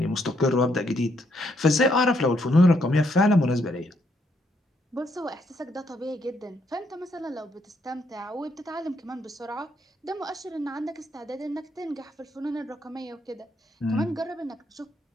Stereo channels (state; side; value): normal; both; correlation 0.74